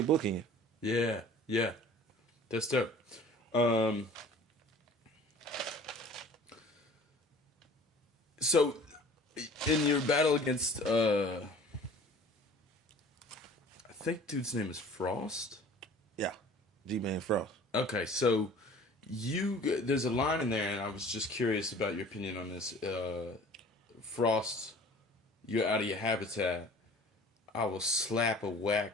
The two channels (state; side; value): normal; both; correlation 0.47